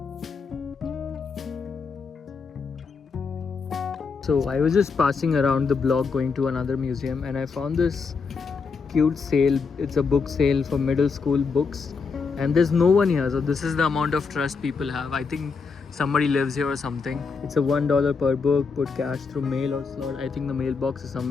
So I was just passing around the block going to another museum, and I found this cute sale. It's a book sale for middle school books, and there's no one here, so this is the amount of trust people have. I think somebody lives here or something. It's a $1 per book. Put cash through mail or slot. I think the mailbox is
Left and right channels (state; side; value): quieter; right; 5.1 dB